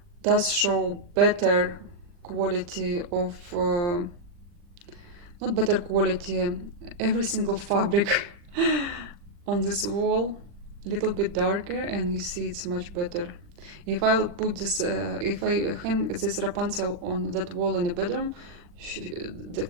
does show better quality of, not better quality, every single fabric on this wall, a little bit darker, and you see it's much better. If I'll put this, if I hang this Rapunzel on that wall in the bedroom, the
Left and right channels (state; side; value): late; left; 40 ms